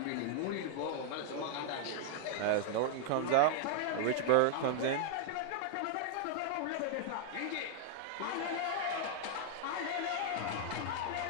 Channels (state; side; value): different; both; correlation 0.00